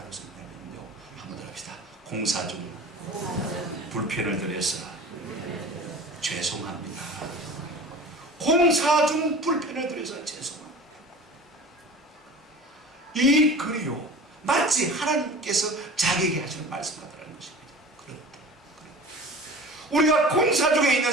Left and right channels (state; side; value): normal; both; correlation 0.39